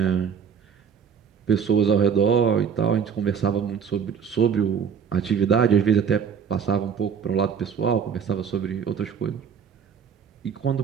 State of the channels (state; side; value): quieter; left; 7.0 dB